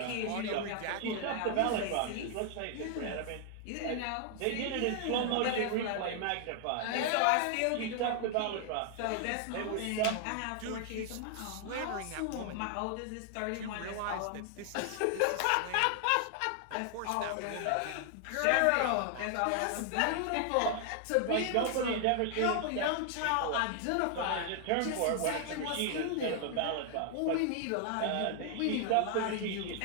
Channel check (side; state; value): both; different; correlation 0.00